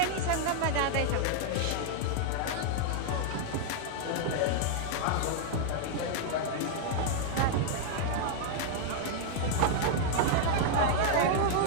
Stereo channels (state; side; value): different; both; correlation -0.01